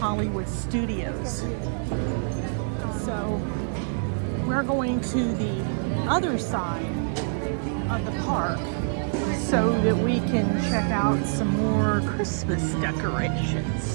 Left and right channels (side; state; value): left; silent; digital silence